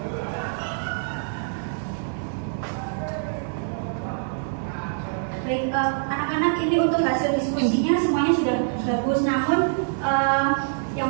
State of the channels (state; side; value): silent; left; digital silence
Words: Baik, anak-anak, ini untuk hasil diskusinya semuanya sudah bagus, namun yang